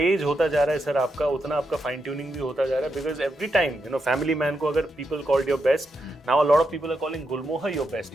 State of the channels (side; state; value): both; normal; correlation 0.84